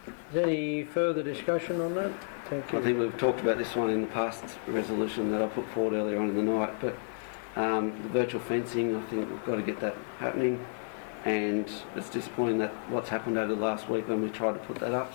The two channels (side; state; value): right; silent; digital silence